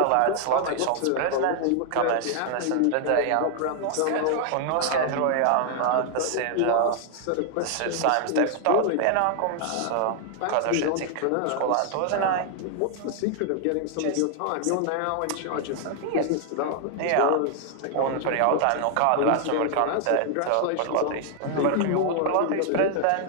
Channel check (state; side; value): different; both; correlation 0.00